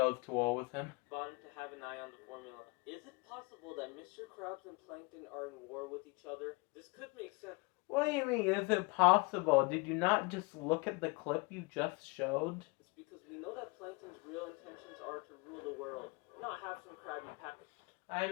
to war with him. Bottom to have an eye on the formula. Is it possible that Mr. Krabs and Plankton are in war with each other? This could make sense. What do you mean, is it possible? Did you not just look at the clip you just showed? It's because we know that Plankton's real intentions are to rule the world, not have some Krabby Patty I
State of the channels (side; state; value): right; quieter; 27.2 dB